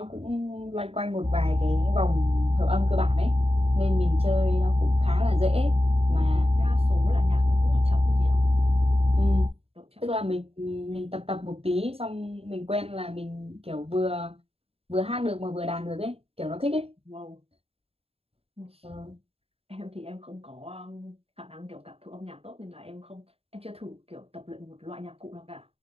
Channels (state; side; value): late; left; 0.29 ms